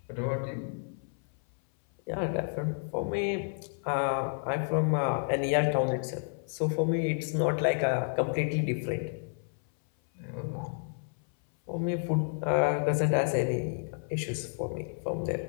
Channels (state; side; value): silent; right; 57 dB below the other